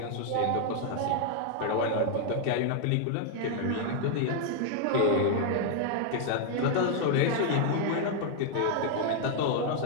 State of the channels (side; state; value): both; different; correlation 0.00